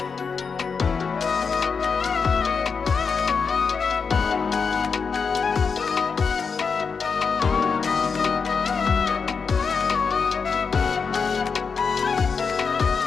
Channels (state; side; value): quieter; right; 5.5 dB